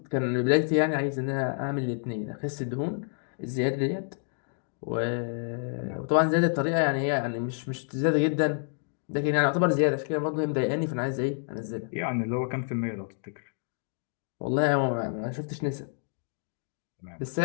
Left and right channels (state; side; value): silent; right; 59 dB below the other